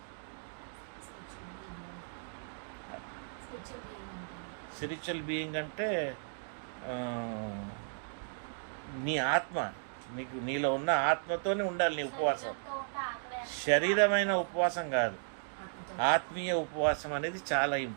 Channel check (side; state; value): left; silent; digital silence